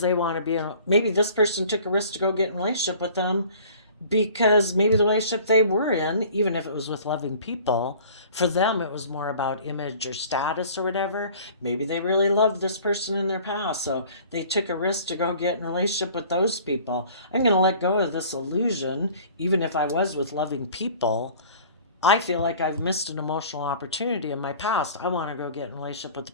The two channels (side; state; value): both; inverted; correlation -0.48